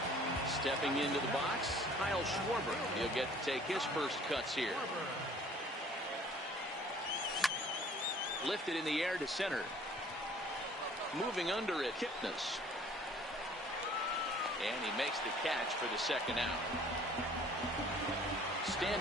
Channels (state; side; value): normal; both; correlation 0.53